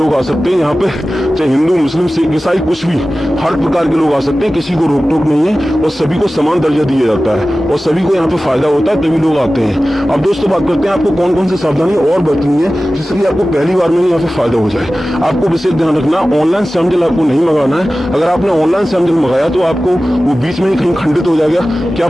आ सकते हैं। यहाँ पे चाहे हिंदू मुस्लिम सिख ईसाई कुछ भी, हर प्रकार के लोग आ सकते हैं, किसी को रोक टोक नहीं है और सभी को समान दर्जा दिया जाता है और सभी को यहाँ पे फायदा होता है, तभी लोग आते हैं। अब दोस्तों बात करते हैं आपको कौन कौन सी सावधानी और बरतनी है जिससे कि आपको पहली बार में यहाँ पे फायदा हो जाए। आपको विशेष ध्यान रखना, ऑनलाइन श्याम जल आपको नहीं मंगाना है। अगर आपने ऑनलाइन श्याम जल मंगाया तो आपको वो बीच में ही कहीं खंडित हो जाएगा, क्या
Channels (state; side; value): normal; both; correlation 0.96